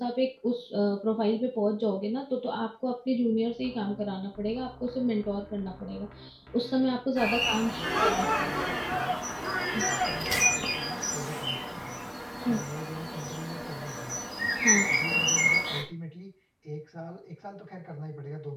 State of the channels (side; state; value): both; identical; correlation 1.00